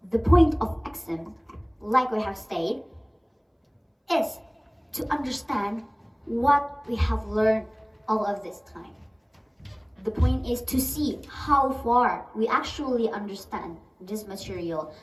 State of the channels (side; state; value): both; identical; correlation 1.00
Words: the point of exam, like we have stated, is to understand what we have learned all of this time. The point is to see how far we actually understand this material,